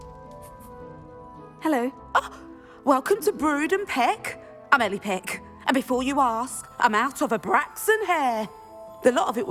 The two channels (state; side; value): identical; both; correlation 1.00